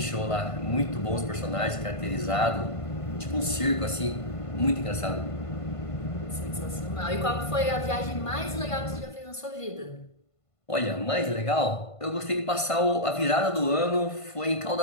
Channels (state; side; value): late; right; 1.5 ms